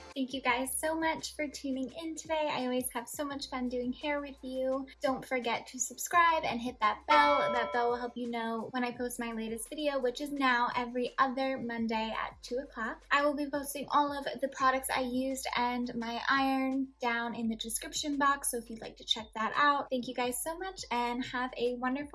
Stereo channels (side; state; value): both; identical; correlation 1.00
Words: Thank you guys so much for tuning in today. I always have so much fun doing hair with you. Don't forget to subscribe and hit that bell. That bell will help you know when I post my latest video, which is now every other Monday at 2 o'clock. I will be posting all of the products I used and my iron down in the description box, so if you'd like to check that out. Thank you guys so much and have a